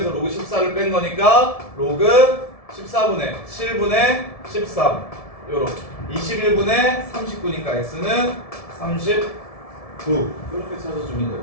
로그 14를 뺀 거니까 로그 14분의 7분의 13 요렇게 21분의 39니까 x는 39 이렇게 찾아주면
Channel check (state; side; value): late; right; 1.7 ms